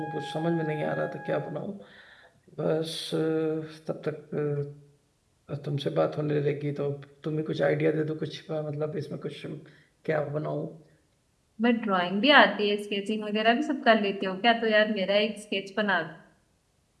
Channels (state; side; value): identical; both; correlation 1.00